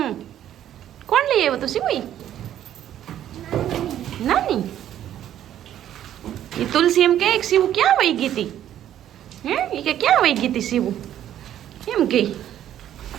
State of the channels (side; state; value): left; quieter; 11.3 dB